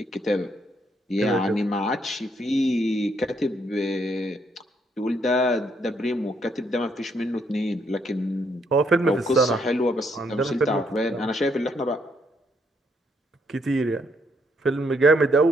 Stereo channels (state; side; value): normal; both; correlation 0.73